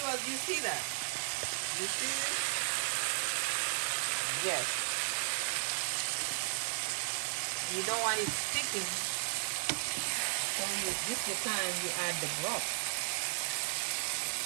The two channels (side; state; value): left; silent; 55 dB below the other